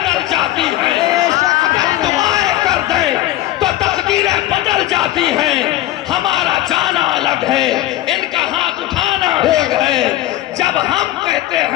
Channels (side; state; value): right; quieter; 15.0 dB